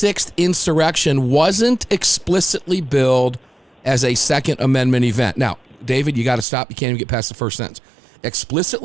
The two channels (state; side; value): drops out; left; at 6.5 s